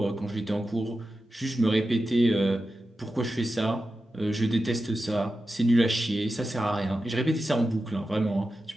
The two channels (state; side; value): normal; both; correlation 0.91